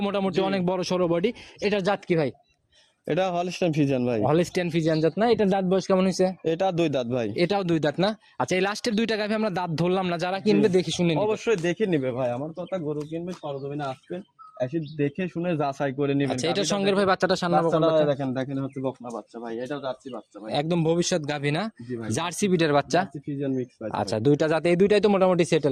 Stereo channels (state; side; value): identical; both; correlation 1.00